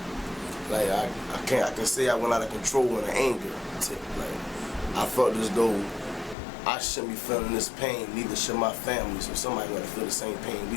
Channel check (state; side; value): drops out; right; at 6.4 s